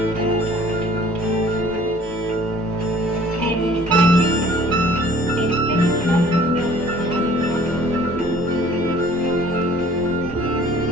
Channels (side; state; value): both; normal; correlation 0.53